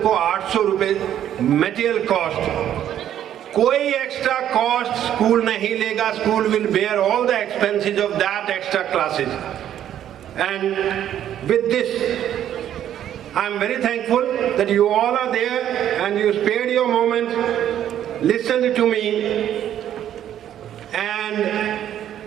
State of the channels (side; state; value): left; quieter; 10.8 dB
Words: 800 रुपए मटेरियल कॉस्ट। कोई एक्स्ट्रा कॉस्ट स्कूल नहीं लेगा, school will bear all the expenses of that extra classes. And with this, I am very thankful that you all are there and you spared your moment, listened to me, and